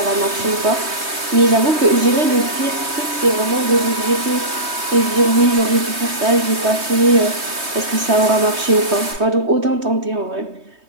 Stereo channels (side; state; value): left; late; 3.2 ms